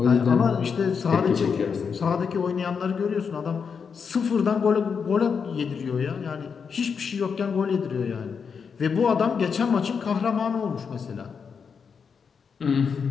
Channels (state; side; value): quieter; right; 6.1 dB